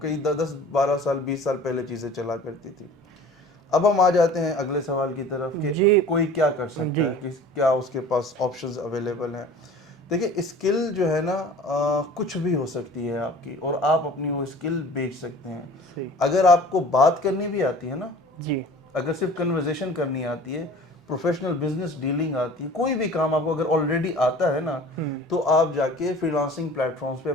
10 12 سال 20 سال پہلے چیزیں چلا کرتی تھی۔ اب ہم آ جاتے ہیں اگلے سوال کی طرف کہ جی کوئی کیا کر سکتا جی ہے، کہ کیا اس کے پاس آپشنز اویلیبل ہیں۔ دیکھیں، اسکل جو ہے نا کچھ بھی ہو سکتی ہے آپ کی، اور آپ اپنی وہ اسکل بیچ سکتے ہیں۔ صحیح اگر آپ کو بات کرنی بھی آتی ہے نا، جی اگر صرف کنورزیشن کرنی آتی ہے، پروفیشنل بزنس ڈیلنگ آتی ہے، کوئی بھی کام آپ کو اگر آلریڈی آتا ہے نا، تو آپ جا کے فری لانسنگ پلیٹ فارمز پہ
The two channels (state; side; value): normal; both; correlation 0.44